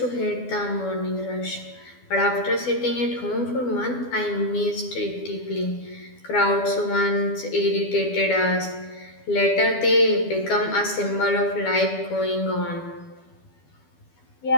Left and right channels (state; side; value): late; right; 12 ms